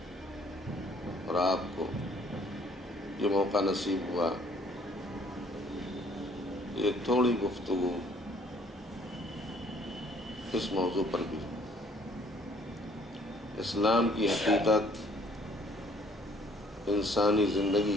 اور آپ کو یہ موقع نصیب ہوا یہ تھوڑی گفتگو اس موضوع پر بھی. اسلام کی حقیقت، انسانی زندگی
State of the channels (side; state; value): both; normal; correlation 0.60